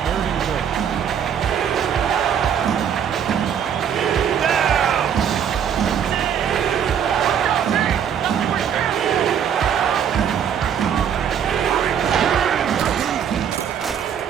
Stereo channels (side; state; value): left; quieter; 8.4 dB